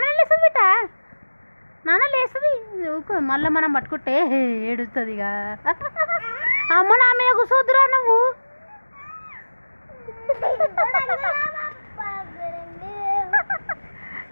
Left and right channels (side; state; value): both; inverted; correlation -1.00